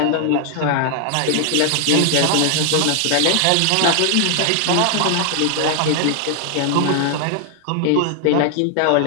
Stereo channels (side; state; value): both; different; correlation 0.00